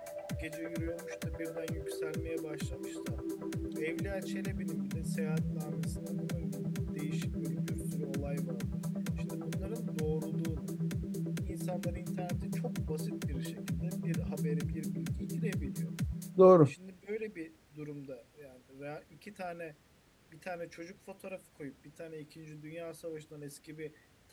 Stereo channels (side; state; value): both; identical; correlation 1.00